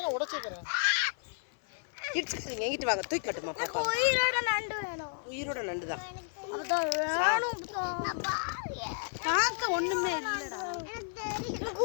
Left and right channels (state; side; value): silent; right; 56 dB below the other